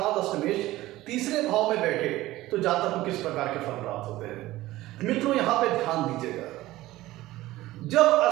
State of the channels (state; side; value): quieter; left; 17.0 dB